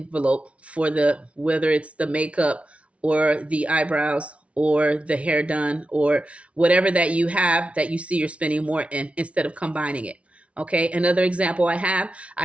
for the, whether it's the makeup or the eyebrows or the hair done or whatever that you have that you see you're spending more in, instead of combining it. Okay, another example I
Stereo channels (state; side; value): late; left; 0.063 ms